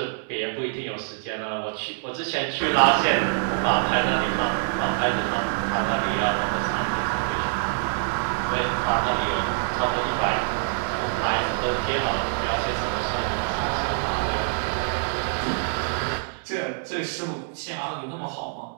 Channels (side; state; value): left; silent; digital silence